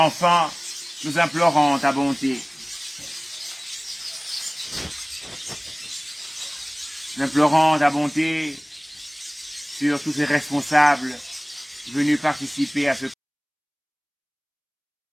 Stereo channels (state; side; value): identical; both; correlation 1.00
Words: nous implorons ta bonté. Nous implorons ta bonté sur tous ces responsables venus participer à ce